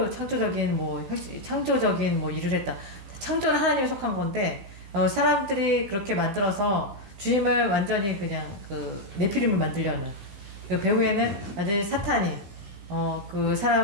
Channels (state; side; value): late; left; 15 ms